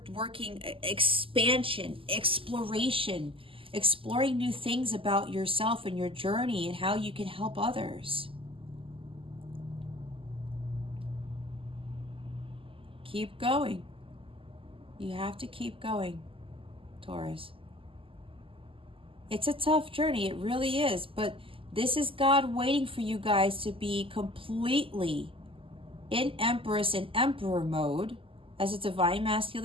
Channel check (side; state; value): left; late; 0.26 ms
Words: working expansion, exploration, exploring new things about yourself and your journey and how you can help others. Keep going. You have to keep going, Taurus. It's a tough journey. It really is. But this is God waiting for you guys to be completely in Empress and Emperor mode as a divine